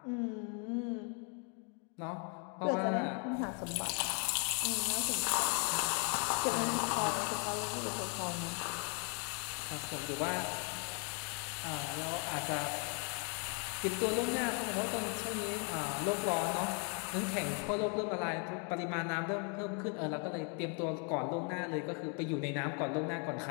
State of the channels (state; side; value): quieter; right; 37.9 dB